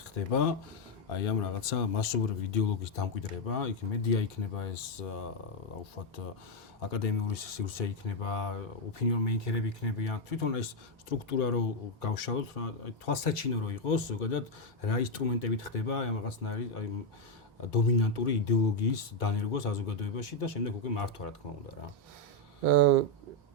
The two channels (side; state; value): both; normal; correlation 0.02